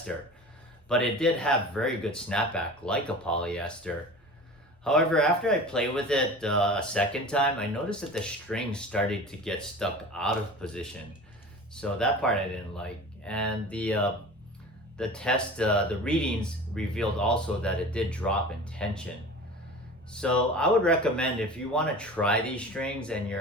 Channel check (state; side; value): normal; both; correlation 0.36